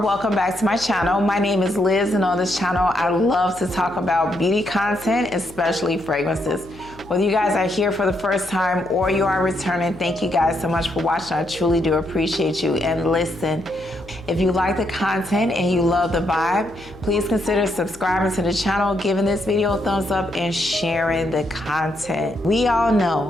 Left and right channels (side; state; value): left; noise; hum, 21 dB below the sound